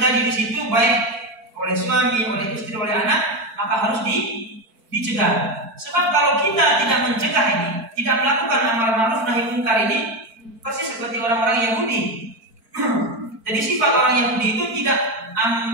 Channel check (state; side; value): late; left; 4.5 ms